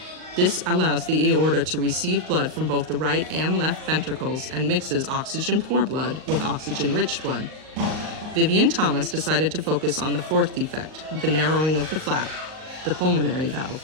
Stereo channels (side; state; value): left; late; 38 ms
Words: This allows the aorta to receive blood from both the right and left ventricles and mixes oxygen-poor blood with oxygen-rich blood. Vivien Thomas decided to focus on the 4th defect, the narrowing of the flap, the pulmonary valve.